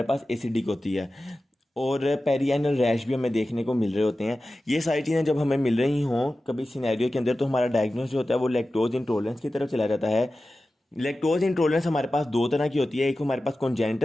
पास एसिडिक होती है, और पेरियानल रैश भी हमें देखने को मिल रहे होते हैं। ये सारी चीज़ें जब हमें मिल रही हों कभी सिनेरियो के अंदर, तो हमारा डायग्नोस जो होता है वो लैक्टोज इंटॉलरेंस की तरफ चला जाता है। लैक्टोज इंटॉलरेंस हमारे पास दो तरह की होती है। एक हमारे पास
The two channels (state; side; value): normal; both; correlation 0.95